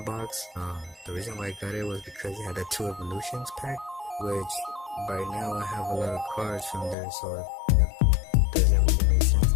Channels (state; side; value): drops out; right; at 7.0 s